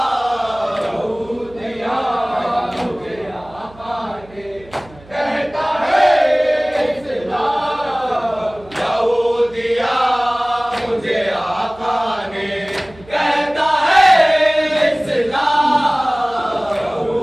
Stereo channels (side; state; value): right; noise; hum, 23 dB below the sound